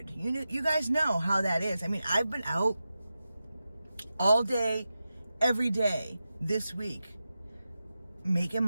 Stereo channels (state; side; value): inverted; both; correlation -0.92